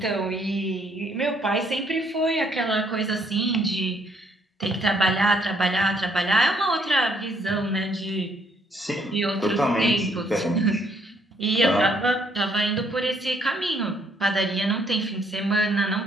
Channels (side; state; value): both; normal; correlation 0.68